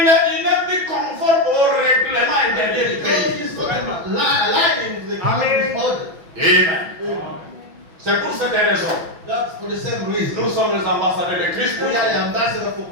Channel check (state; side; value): late; left; 5.9 ms